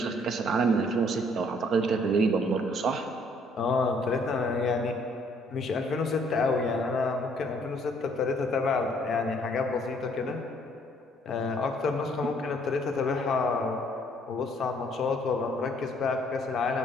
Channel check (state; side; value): normal; both; correlation 0.64